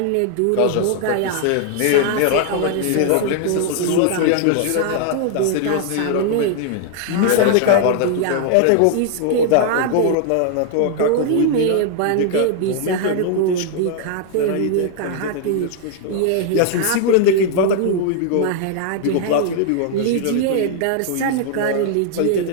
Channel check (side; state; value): both; different; correlation 0.00